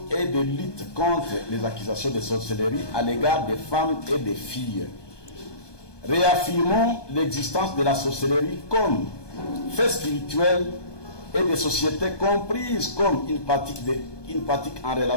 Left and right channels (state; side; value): late; right; 1.2 ms